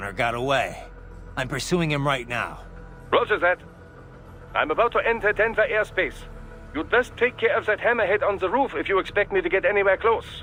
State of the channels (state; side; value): identical; both; correlation 1.00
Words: got away. I'm pursuing him right now. Roger that. I'm about to enter Denver airspace. You'd best take care of that hammerhead on the roof if you expect me to get anywhere close.